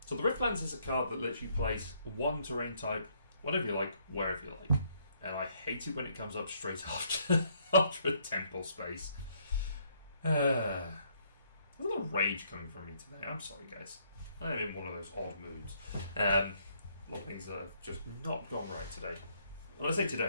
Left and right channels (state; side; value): inverted; both; correlation -0.69